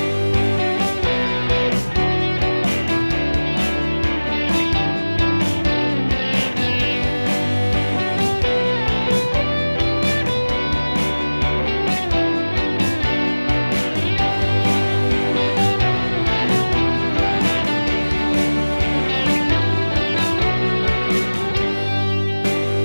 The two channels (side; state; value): both; inverted; correlation -1.00